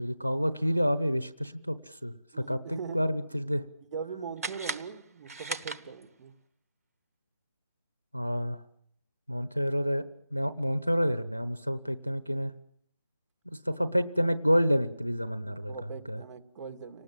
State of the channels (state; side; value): inverted; both; correlation -0.94